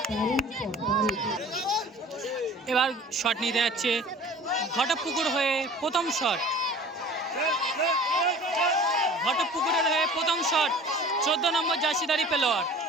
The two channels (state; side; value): normal; both; correlation 0.44